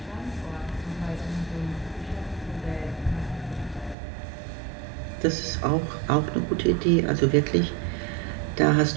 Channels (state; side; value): drops out; left; at 4.0 s